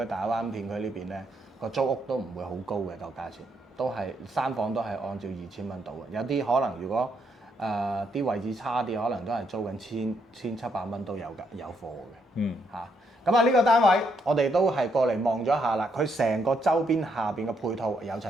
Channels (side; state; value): both; normal; correlation 0.76